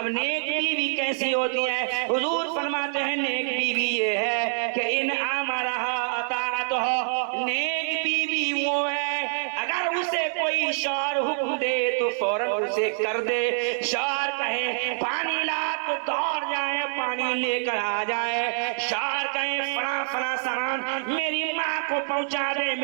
نیک بیوی کیسی ہوتی ہے؟ حضور فرماتے ہیں نیک بیوی یہ ہے کہ ان امرها اطاعتها، نیک بیوی وہ ہے اگر اسے کوئی شوہر حکم دے تو فوراً اسے کر دے. شوہر کہے پانی لا تو دوڑ جائے پانی لے کر آ جائے. شوہر کہے فلاں فلاں سامان میری ماں کو پہنچا دے،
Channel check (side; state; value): left; silent; digital silence